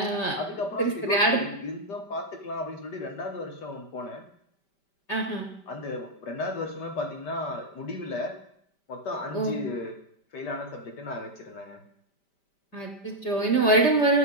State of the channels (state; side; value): late; right; 5.1 ms